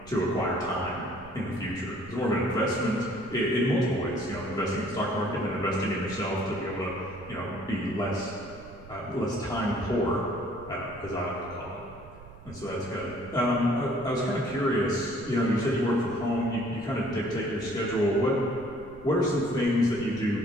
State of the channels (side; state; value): right; noise; rumble, 19 dB below the sound